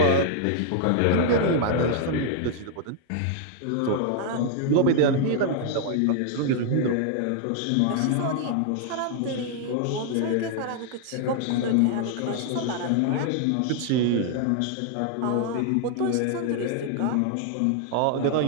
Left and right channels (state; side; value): different; both; correlation -0.01